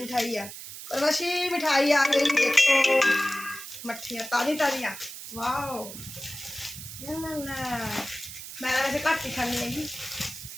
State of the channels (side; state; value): right; noise; hiss, 11 dB below the sound